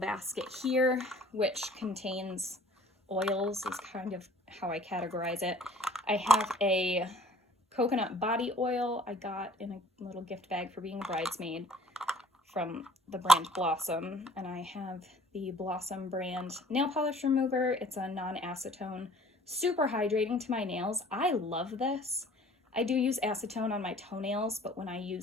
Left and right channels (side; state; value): both; normal; correlation 0.53